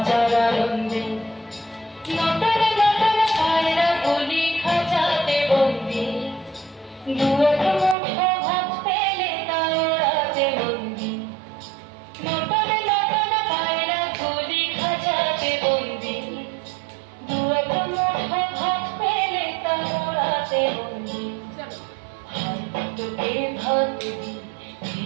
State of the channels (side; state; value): left; drops out; at 8.0 s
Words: আনন্দে। নটন নটন পায়রা গুলি খাঁচাতে বন্দি, দু এক মুঠো ভাত পেলে তা ওড়াতে বন্দি। নটন নটন পায়রা গুলি খাঁচাতে বন্দি, দু এক মুঠো ভাত পেলে তা ওড়াতে বন্দি। তোকে ভাত দি, কি